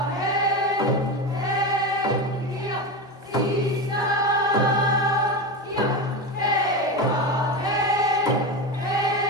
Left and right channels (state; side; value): normal; both; correlation 0.19